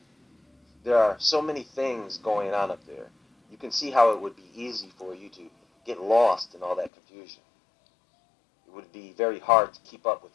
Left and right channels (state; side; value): drops out; right; at 6.9 s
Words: There are so many things going on up there. You can see how it would be easy for you to get lost in all that confusion. It would be very hard to keep up with